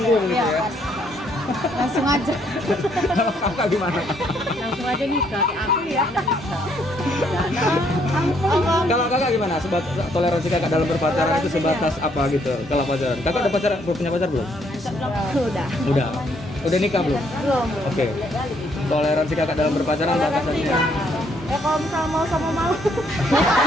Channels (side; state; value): both; normal; correlation 0.69